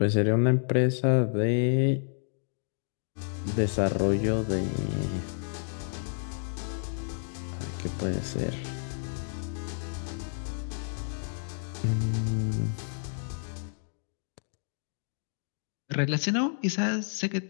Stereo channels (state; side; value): silent; right; digital silence